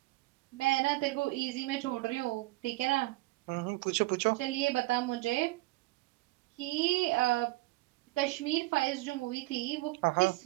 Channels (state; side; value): quieter; left; 20.8 dB